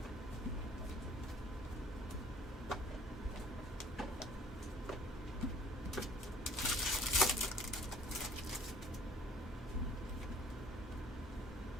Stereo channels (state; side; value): normal; both; correlation 0.55